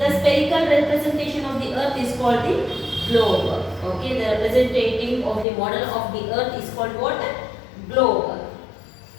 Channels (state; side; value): drops out; right; at 5.5 s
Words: spherical representation of the Earth is called the globe. Okay, the representative of the model of the Earth is called what? Globe.